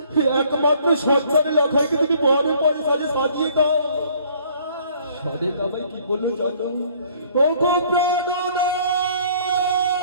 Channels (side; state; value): both; inverted; correlation -0.59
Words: একমাত্র সন্তান লখাইকে তুমি বরের পরে সাজে সাজিয়ে দাও। সরিকা ভাই কি বললো জানো? ও গো প্রাণনা,